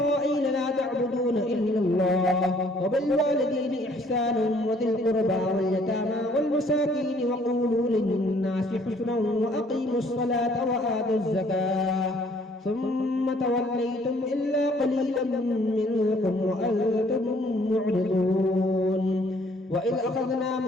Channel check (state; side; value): normal; both; correlation 0.61